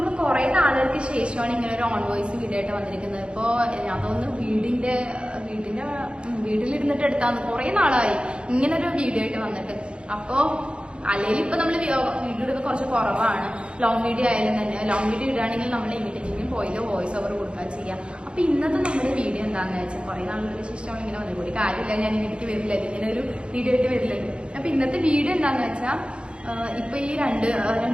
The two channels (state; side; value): late; left; 0.056 ms